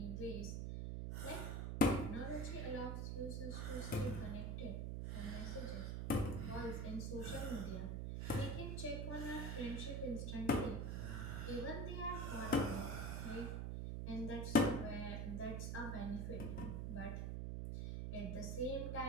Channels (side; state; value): right; noise; hum, 1 dB below the sound